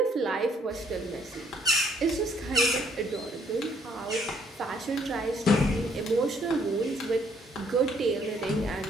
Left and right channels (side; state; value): both; normal; correlation 0.66